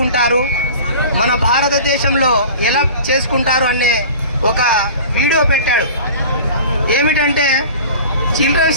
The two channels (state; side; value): inverted; both; correlation -0.40